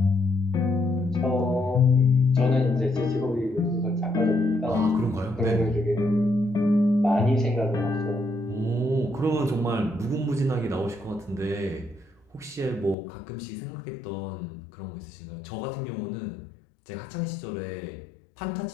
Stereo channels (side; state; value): right; drops out; at 13.0 s